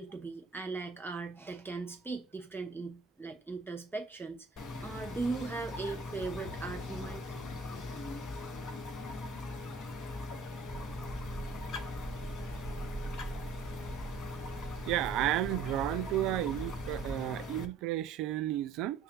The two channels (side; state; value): left; quieter; 4.8 dB